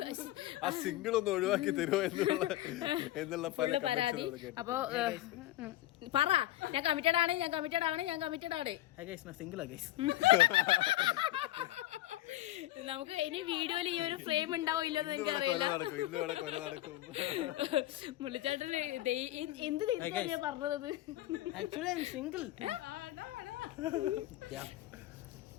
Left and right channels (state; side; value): quieter; right; 15.2 dB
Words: ആ സിംഗിൾ ഒന്ന് ഒഴിവാക്കി തരുമോ എന്നുള്ള പരാതി. അപ്പൊ പറ, ഞാൻ കമ്മിറ്റഡ് ആണ്. നമുക്ക് ഇനി വീഡിയോയിൽ ഈ ഒരു ഫ്രെയിം ഉണ്ടാവോ ഇല്ലെന്ന് എനിക്കറിയില്ല. മുള്ളിച്ചേട്ടന് എന്ത് തിരിച്ചാ പറഞ്ഞത്?